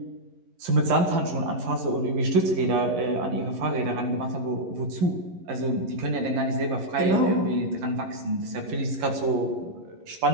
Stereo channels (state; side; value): late; left; 11 ms